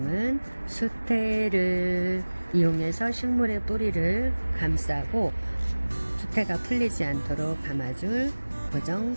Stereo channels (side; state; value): both; inverted; correlation -1.00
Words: 수태를 이용해서 식물의 뿌리를 감싸고 수태가 풀리지 않도록 감아줄 고정